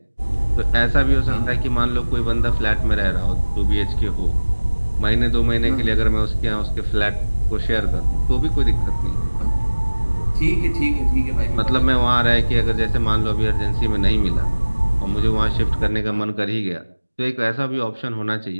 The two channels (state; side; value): inverted; both; correlation -1.00